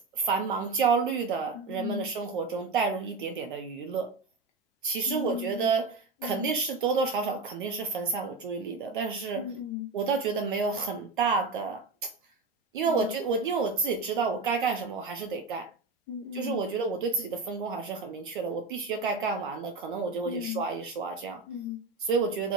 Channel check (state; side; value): quieter; left; 4.0 dB